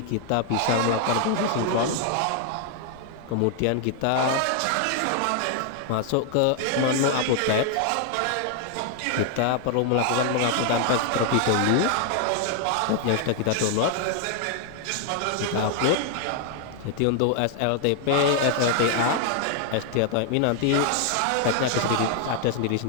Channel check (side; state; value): both; different; correlation 0.00